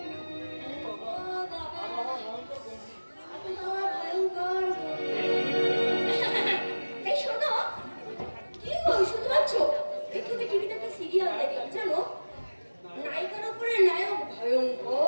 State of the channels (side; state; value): both; inverted; correlation -1.00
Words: এই শোনো, কি গো শুনতে পাচ্ছ? একটু টিভিতে একটা সিরিয়াল দেখলাম, জানো নায়িকার উপরে নায়ক